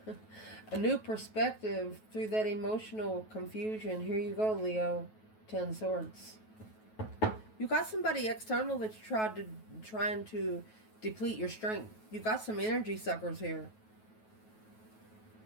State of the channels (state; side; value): late; right; 9.3 ms